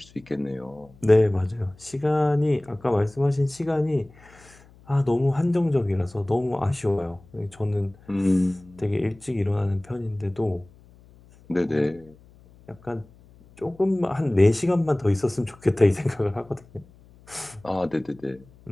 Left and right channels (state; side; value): noise; left; hum, 26 dB below the sound